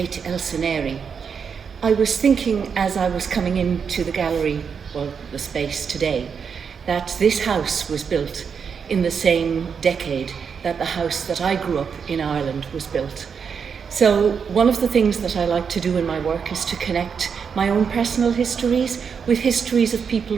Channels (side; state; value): left; quieter; 6.4 dB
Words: El Seneri. I was thinking as I was coming into the gallery, well, the space today, that this house was built in the same decade that the house that I grew up in Ireland was built. So one of the things that I like to do in my work is to connect my own personal histories with histories of people